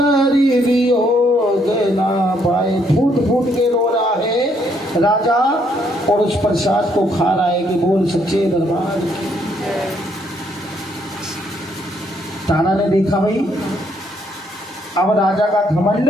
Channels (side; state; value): both; normal; correlation 0.70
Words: वियोग ना पाए। फूट फूट के रो रहा है राजा और उस प्रसाद को खा रहा है कि बोल सच्चे दरबार की। तारा ने देखा भाई अब राजा का घमंड